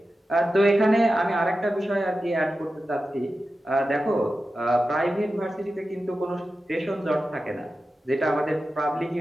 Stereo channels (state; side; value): normal; both; correlation 0.92